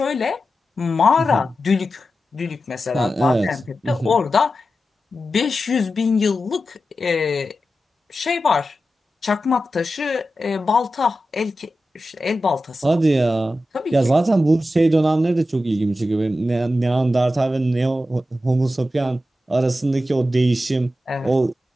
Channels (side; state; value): both; normal; correlation 0.92